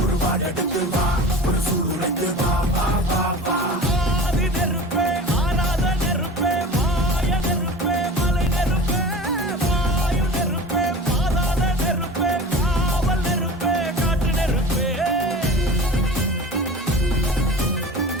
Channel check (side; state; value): both; normal; correlation 0.37